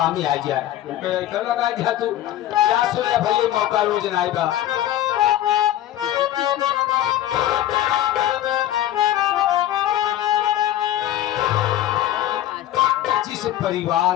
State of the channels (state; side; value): quieter; right; 12.7 dB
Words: ही आ जाए कर लगाई दिया तू क्या सुने भैया मौका रोज ना आएगा। जिस